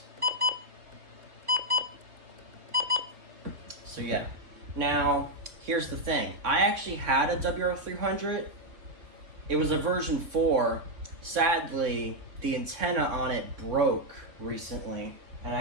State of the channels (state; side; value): late; left; 3.9 ms